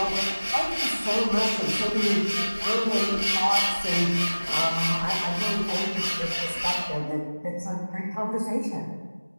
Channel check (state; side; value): inverted; both; correlation -1.00